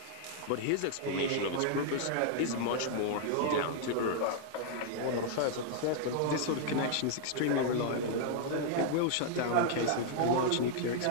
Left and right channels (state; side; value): different; both; correlation -0.01